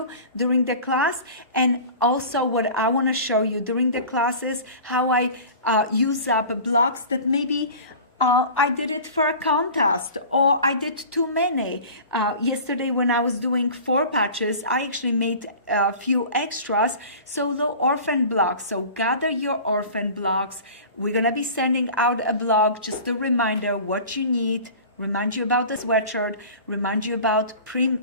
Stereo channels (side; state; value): both; inverted; correlation -0.39